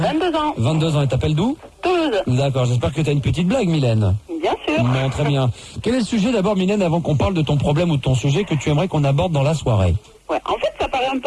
ans. 22 ans, et t'appelles d'où? Toulouse. D'accord, j'espère que t'as une petite blague Mylène. Bien sûr. Non, très bien. Quel est le sujet d'abord Mylène, avant qu'on parle de ton problème ou de ton sujet que tu aimerais qu'on aborde dans la soirée? Ouais, en fait, ça paraît un peu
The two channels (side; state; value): both; identical; correlation 1.00